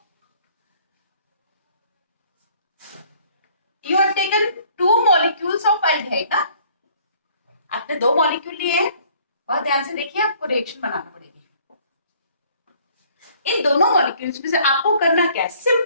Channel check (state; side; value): inverted; both; correlation -0.58